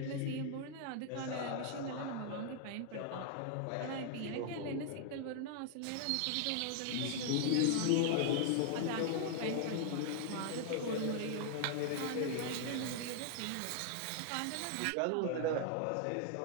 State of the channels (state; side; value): different; both; correlation 0.00